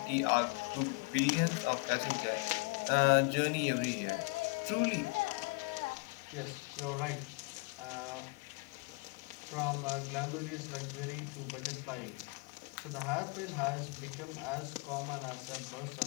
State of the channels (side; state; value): right; quieter; 28.3 dB